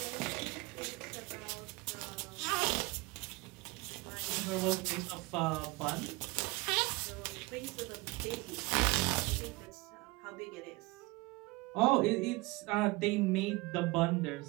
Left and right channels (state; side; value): quieter; left; 23.4 dB